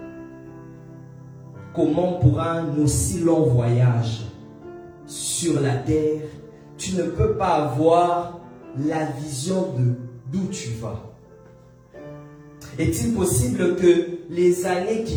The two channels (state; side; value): identical; both; correlation 1.00